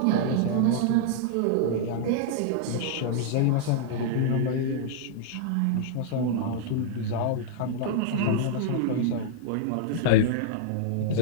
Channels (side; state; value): both; different; correlation -0.01